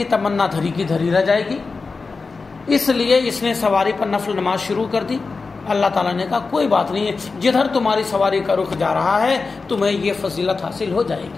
تمنا دھری کی دھری رہ جائے گی، اس لیے اس نے سواری پر نفل نماز شروع کر دی۔ اللہ تعالیٰ نے کہا کوئی بات نہیں ہے، جدھر تمہاری سواری کا رخ جا رہا ہے تمہیں یہ فضیلت حاصل ہو جائے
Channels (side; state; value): right; quieter; 4.3 dB